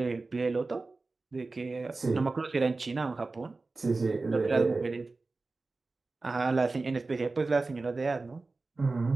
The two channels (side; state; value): left; quieter; 3.6 dB